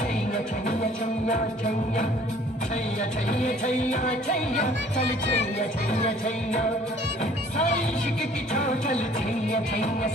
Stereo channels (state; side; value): normal; both; correlation 0.55